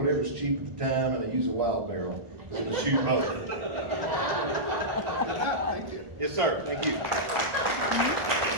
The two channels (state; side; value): late; left; 1.4 ms